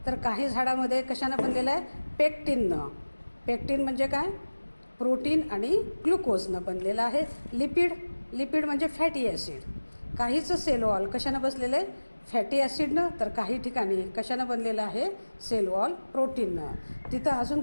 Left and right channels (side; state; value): both; inverted; correlation -1.00